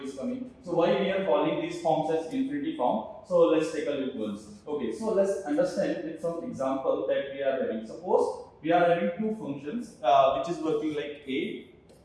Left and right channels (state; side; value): identical; both; correlation 1.00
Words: is coming. So why we are calling these forms as infinity form? So let's take a look once. Okay, so let's understand with some example that we are having. Suppose we are having two functions which is working like a,